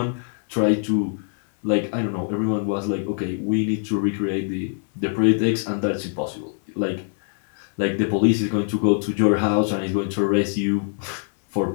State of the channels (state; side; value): silent; right; 63 dB below the other